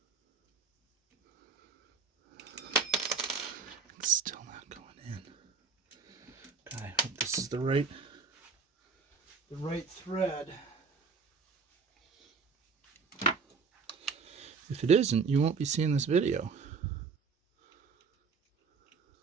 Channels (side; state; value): left; quieter; 5.2 dB